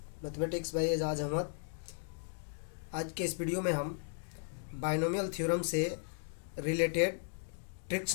mathematics by Ejaz Ahmad. आज के इस video में हम बाइनोमियल थ्योरम से रिलेटेड ट्रिक्स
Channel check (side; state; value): right; silent; digital silence